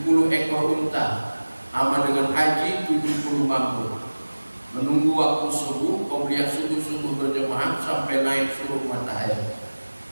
ekor unta, sama dengan haji 70 mabur. Menunggu waktu subuh, kemudian subuh berjemaah sampai naik surut matahari.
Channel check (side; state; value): both; inverted; correlation -1.00